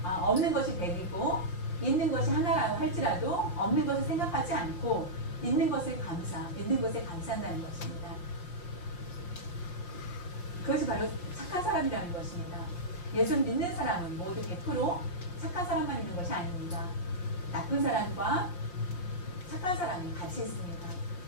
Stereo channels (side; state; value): right; late; 5.7 ms